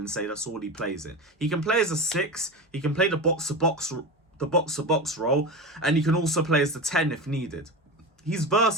say that's all he plays in. He can play as a 6. He can play the box-to-box role, and he can also play as the 10 if needed. He's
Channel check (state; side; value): normal; both; correlation 0.24